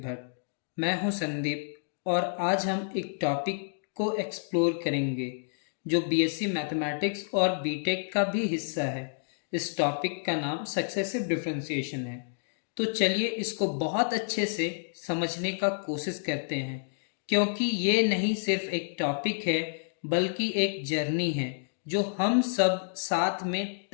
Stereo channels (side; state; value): right; silent; digital silence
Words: मैं हूं संदीप और आज हम एक टॉपिक को एक्सप्लोर करेंगे जो बीएससी मैथमेटिक्स और बीटेक का भी हिस्सा है। इस टॉपिक का नाम सक्सेसिव डिफरेंशिएशन है। तो चलिए इसको बहुत अच्छे से समझने का कोशिश करते हैं, क्योंकि ये नहीं सिर्फ एक टॉपिक है बल्कि एक जर्नी है जो हम सब साथ में